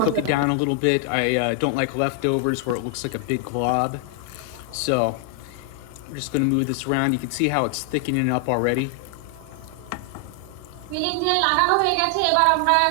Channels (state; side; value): different; both; correlation 0.00